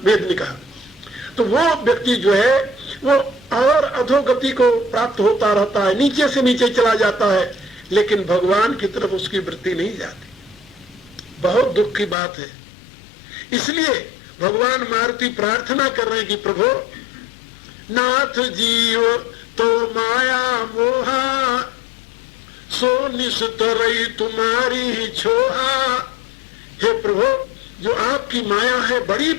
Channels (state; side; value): drops out; right; at 12.2 s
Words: वेद ने कहा। तो वो व्यक्ति जो है वो और अधोगति को प्राप्त होता रहता है, नीचे से नीचे चला जाता है, लेकिन भगवान की तरफ उसकी वृत्ति नहीं जाती। बहुत दुख की बात है। इसलिए भगवान मारुति प्रार्थना कर रहे हैं कि प्रभु नाथ जीव तो माया मोहा सो निस्तरई तुम्हारी ही छोहा। हे प्रभु, जो आपकी माया है बड़ी